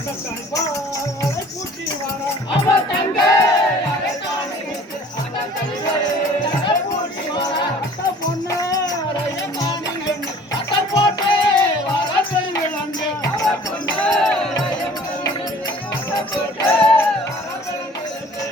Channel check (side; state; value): both; normal; correlation 0.50